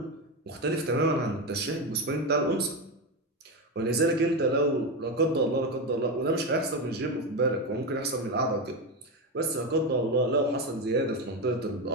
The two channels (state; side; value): normal; both; correlation 0.14